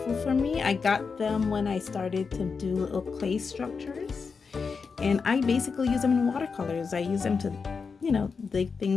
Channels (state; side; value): quieter; right; 5.2 dB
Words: for me. I got them when I started to do little clay structures, and I basically use them in watercolors. I use them to, you know, dig